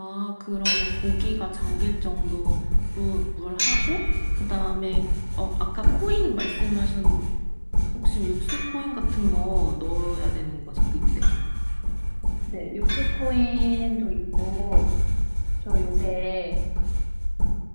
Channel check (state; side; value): inverted; both; correlation -1.00